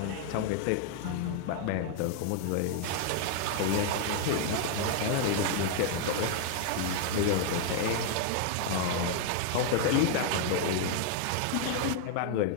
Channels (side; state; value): both; different; correlation 0.00